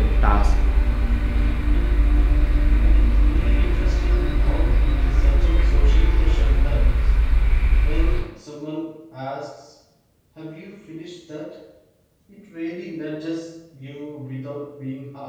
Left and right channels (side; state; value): both; identical; correlation 1.00